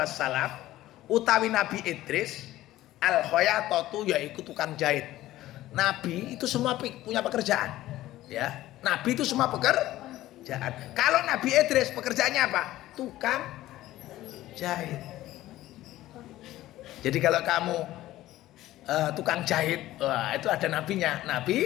wassalam utawi nabi Idris al khayatatu yaiku tukang jahit. Nabi itu semua punya pekerjaan ya. Nabi itu semua pekerjaan. Kalau Nabi Idris pekerjaannya apa? Tukang jahit. Jadi kalau kamu tukang jahit, wah, itu ada nabinya,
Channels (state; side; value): quieter; right; 15.4 dB